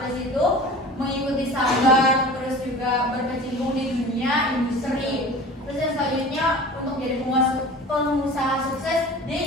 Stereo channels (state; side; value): normal; both; correlation 0.39